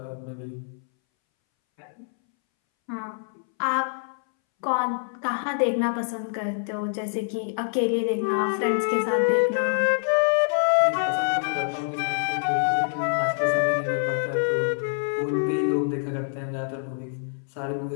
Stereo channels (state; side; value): silent; right; 61 dB below the other